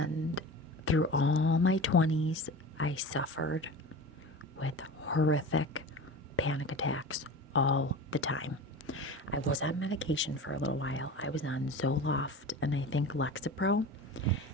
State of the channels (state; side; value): normal; both; correlation 0.33